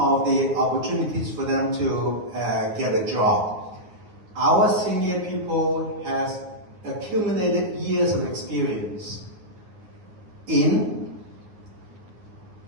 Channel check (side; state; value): left; late; 9.6 ms